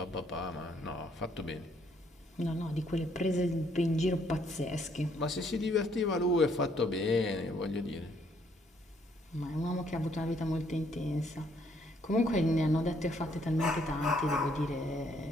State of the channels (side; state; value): both; normal; correlation 0.68